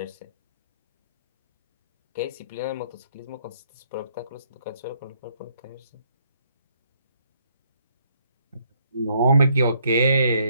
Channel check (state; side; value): inverted; both; correlation -0.70